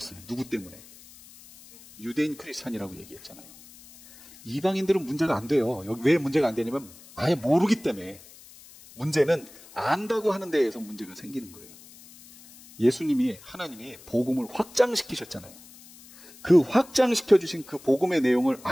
누구 때문에? 유대인 크리스찬이라고 얘기했잖아요. 이방인들은 문제가 안 돼요. 여기 왜 문제가 안 되냐면 아예 모르기 때문에. 문제는 안다고 하는 데에서 문제가 생기는 거예요. 예수님이, 하나님이 복음을 확장시키셨잖아요. 그 확장시켜주신 그 복음의 내용을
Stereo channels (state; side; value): noise; left; hiss, 21 dB below the sound